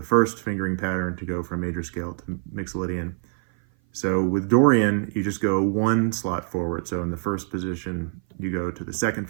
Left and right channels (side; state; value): left; silent; 57 dB below the other